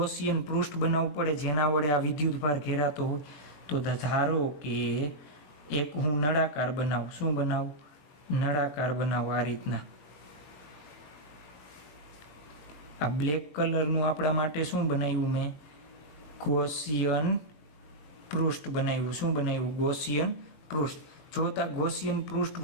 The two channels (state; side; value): late; right; 20 ms